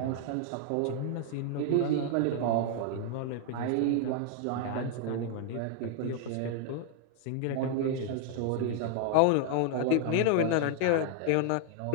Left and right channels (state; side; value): different; both; correlation 0.00